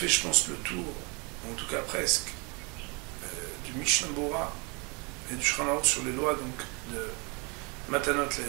je pense, le tour, en tout cas presque, du Mishnah Bora et du Shulchan Aruch sur les lois donc de Matanot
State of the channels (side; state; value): left; quieter; 30.4 dB